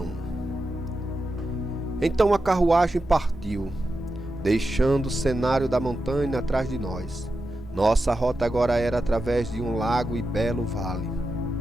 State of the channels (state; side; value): normal; both; correlation 0.90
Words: Então a carruagem partiu, deixando o cenário da montanha atrás de nós. Nossa rota agora era através de um lago e belo vale.